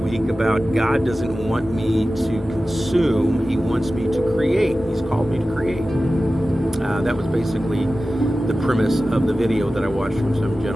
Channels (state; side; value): normal; both; correlation 0.95